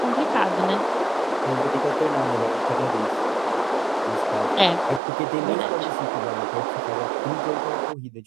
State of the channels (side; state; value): left; drops out; at 5.0 s